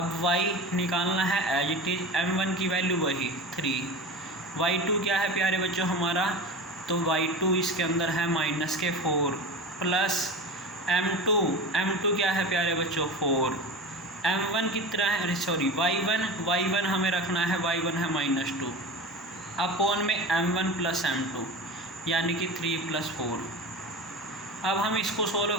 y निकालना है एज इट इज m1 की वैल्यू वही 3, y2 क्या है प्यारे बच्चों हमारा, तो y2 इसके अंदर है -4 प्लस m2 क्या है प्यारे बच्चों 4। m1 कितना है सॉरी y1 हमें रखना है, y1 है -2 अपॉन में m1 प्लस m2 यानी कि 3 + 4। अब हम इसको सोल्व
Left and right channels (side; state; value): both; normal; correlation 0.30